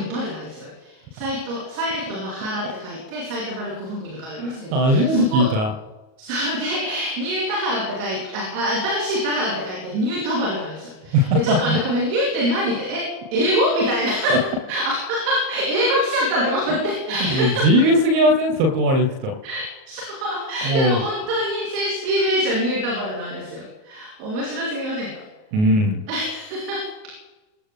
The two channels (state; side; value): late; left; 38 ms